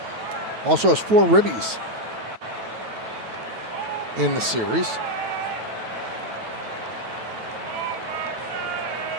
Also has 4 ribbies in the series.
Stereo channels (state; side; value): late; left; 9.2 ms